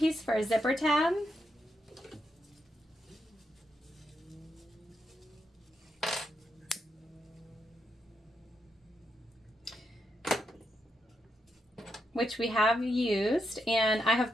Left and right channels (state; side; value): normal; both; correlation 0.83